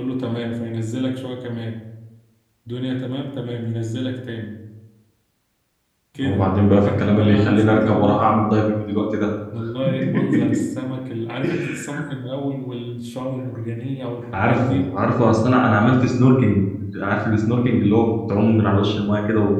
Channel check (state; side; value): identical; both; correlation 1.00